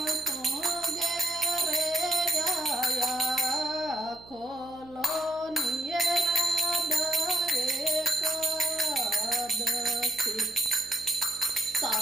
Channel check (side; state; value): right; noise; hum, 22 dB below the sound